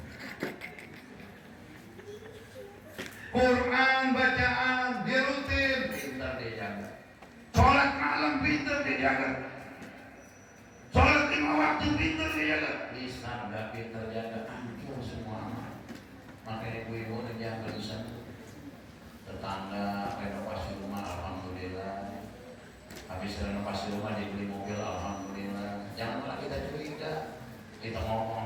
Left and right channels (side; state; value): both; identical; correlation 1.00